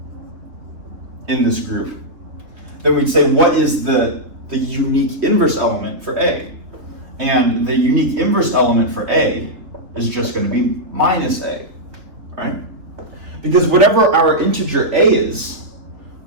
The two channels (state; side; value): late; left; 3.5 ms